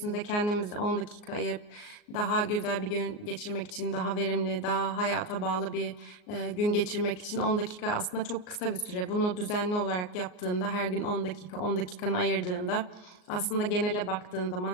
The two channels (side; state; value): right; late; 38 ms